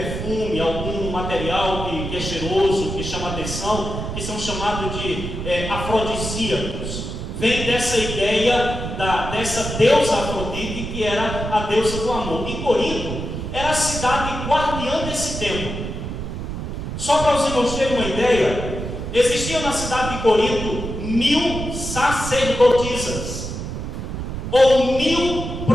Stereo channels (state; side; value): noise; right; rumble, 6 dB below the sound